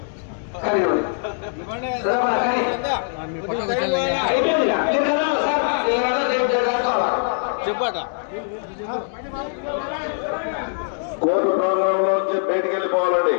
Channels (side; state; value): right; silent; digital silence